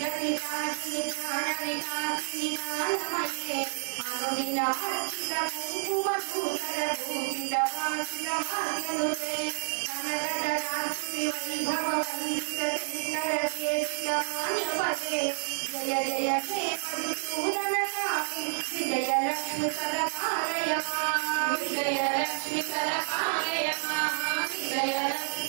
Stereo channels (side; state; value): left; silent; 58 dB below the other